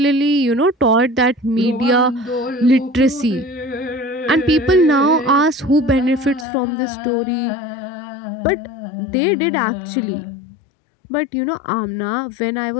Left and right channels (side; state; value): right; drops out; at 6.5 s